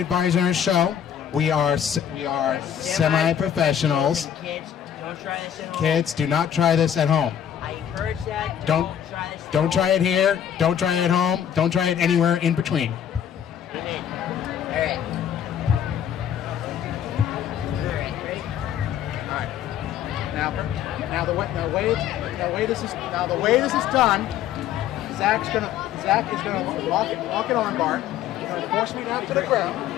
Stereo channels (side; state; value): right; quieter; 9.5 dB